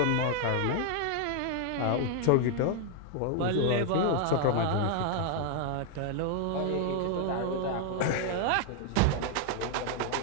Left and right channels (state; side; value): different; both; correlation 0.00